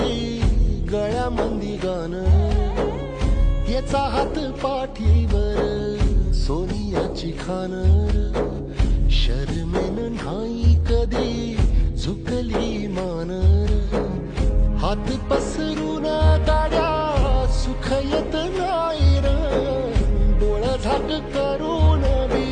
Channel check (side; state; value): both; identical; correlation 1.00